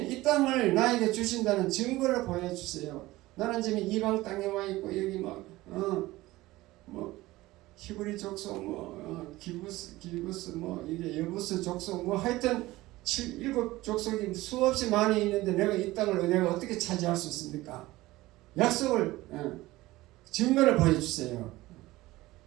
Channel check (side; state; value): left; quieter; 18.3 dB